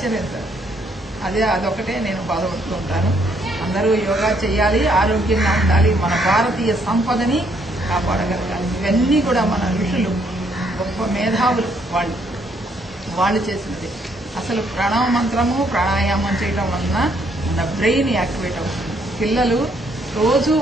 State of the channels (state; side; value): normal; both; correlation 0.70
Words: అదొకటే నేను బాధపడుతూ ఉంటాను. అందరూ యోగా చేయాలి, ఆరోగ్యంగా ఉండాలి, మన భారతీయ సంపదని కాపాడగలగాలి. ఇవన్నీ కూడా మన ఋషులు, గొప్ప మేధావులు వాళ్ళు చేసినది. అసలు ప్రణవ మంత్రము, ప్రాణాయామం చేయడం వలన మన బ్రెయిన్ యాక్టివేట్ అవుతుంది. పిల్లలు రోజు